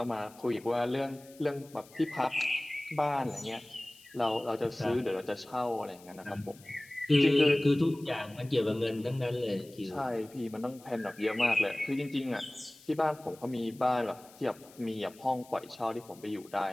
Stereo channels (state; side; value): noise; left; hiss, 23 dB below the sound